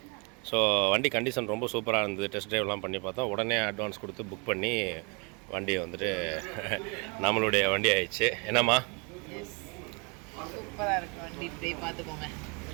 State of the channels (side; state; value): left; quieter; 32.3 dB